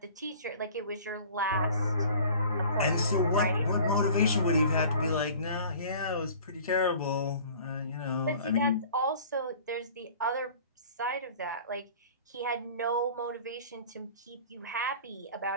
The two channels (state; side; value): inverted; both; correlation -0.46